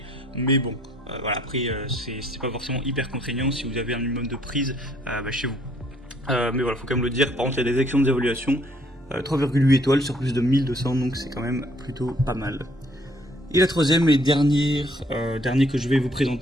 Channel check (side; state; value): both; normal; correlation 0.64